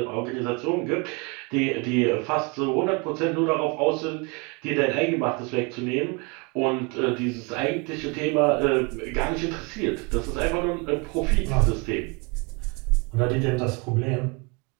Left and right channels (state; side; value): quieter; left; 30.0 dB